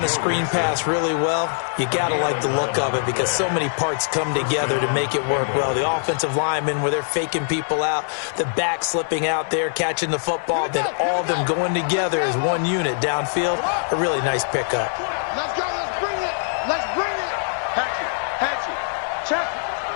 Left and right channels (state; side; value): silent; right; digital silence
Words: a screen pass really well, you got to like the look of it because so many parts come together to make it work well. The offensive linemen, where they're faking people out, the back slipping out there, catching the football, then all of them going together as one unit downfield. A really nice pickup. Let's go. Let's bring it. Let's bring it. Hatchet. Check.